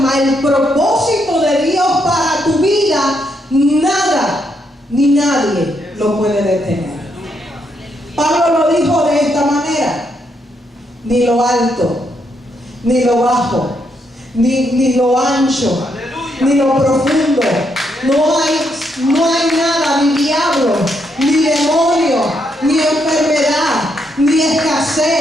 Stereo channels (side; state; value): both; normal; correlation 0.77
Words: El propósito de Dios para tu vida, nada ni nadie lo puede detener. Pablo lo dijo de esta manera: ni lo alto, ni lo bajo, ni lo ancho, ni lo profundo. No hay nada, ni diablo, ni demonio, ni enfermedad, ni